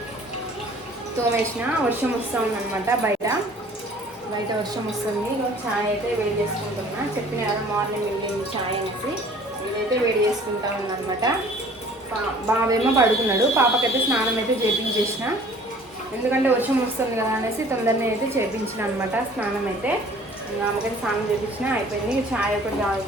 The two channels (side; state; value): both; normal; correlation 0.51